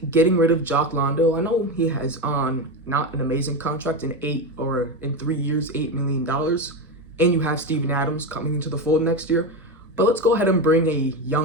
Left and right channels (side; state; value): both; normal; correlation 0.16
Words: getting rid of Jock Landale, I know he has on not an amazing contract in 3 years, $8 million. And you have Steven Adams coming into the fold next year. But let's go ahead and bring a